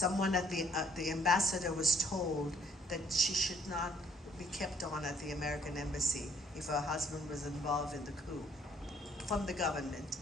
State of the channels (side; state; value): both; normal; correlation 0.63